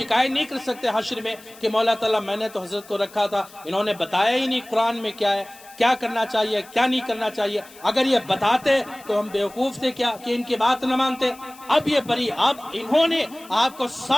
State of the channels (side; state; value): left; noise; hiss, 22 dB below the sound